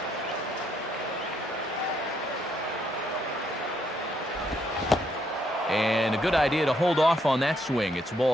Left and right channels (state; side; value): normal; both; correlation 0.73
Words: And a good idea to hold off on that swing. It's